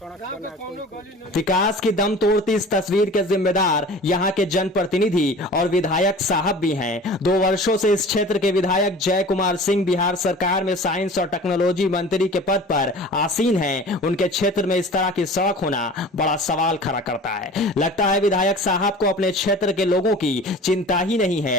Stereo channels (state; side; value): normal; both; correlation 0.41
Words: बना कोई। विकास की दम तोड़ती इस तस्वीर के जिम्मेदार यहाँ के जनप्रतिनिधि और विधायक साहब भी हैं। 2 वर्षों से इस क्षेत्र के विधायक जय कुमार सिंह बिहार सरकार में साइंस और टेक्नोलॉजी मंत्री के पद पर आसीन हैं। उनके क्षेत्र में इस तरह की सड़क होना बड़ा सवाल खड़ा करता है। लगता है विधायक साहब को अपने क्षेत्र के लोगों की चिंता ही नहीं